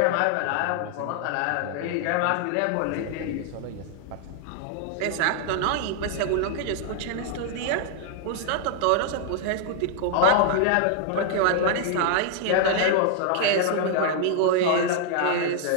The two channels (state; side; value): different; both; correlation 0.00